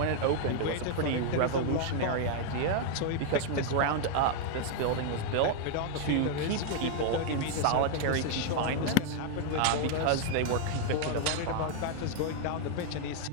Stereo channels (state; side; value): different; both; correlation 0.00